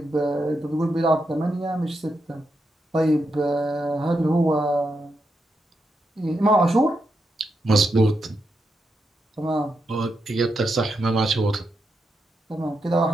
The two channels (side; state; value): both; normal; correlation 0.84